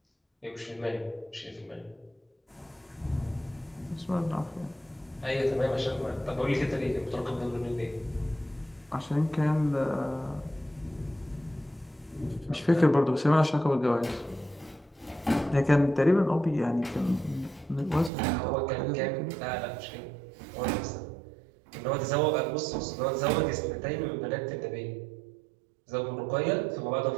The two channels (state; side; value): drops out; left; at 18.1 s